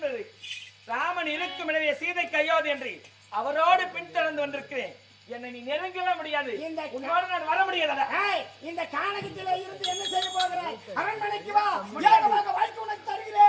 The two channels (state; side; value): identical; both; correlation 1.00